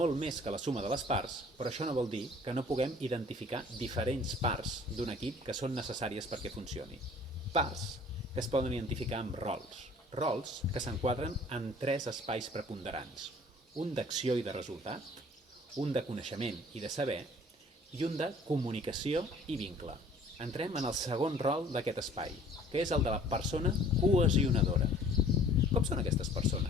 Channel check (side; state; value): both; normal; correlation 0.53